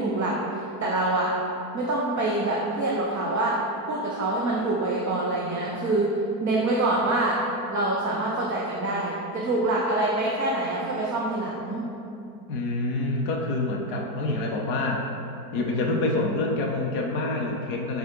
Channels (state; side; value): late; right; 4.5 ms